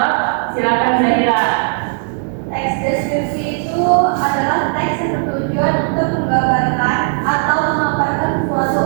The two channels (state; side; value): silent; left; 65 dB below the other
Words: Silakan Zahira. Teks deskripsi itu adalah teks yang bertujuan untuk menggambarkan atau memaparkan